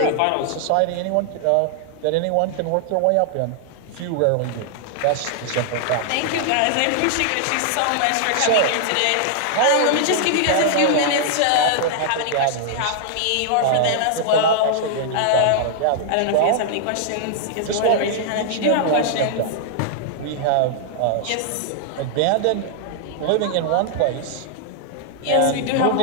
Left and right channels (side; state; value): both; different; correlation -0.01